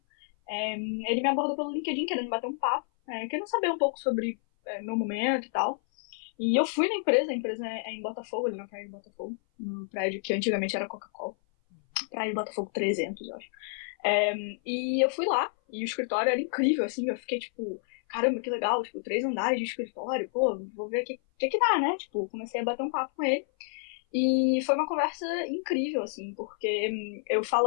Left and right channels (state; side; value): silent; right; 57 dB below the other